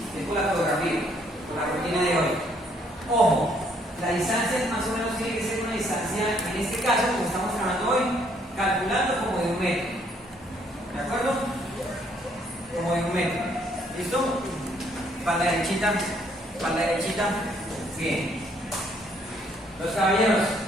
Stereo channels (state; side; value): normal; both; correlation 0.67